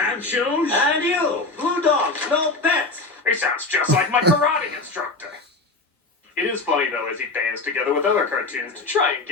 shoes? And you, Blue Dog, no pets. He sounds just like my karate instructor. It is funny though as he bands together with other cartoons to try and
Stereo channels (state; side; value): quieter; right; 3.4 dB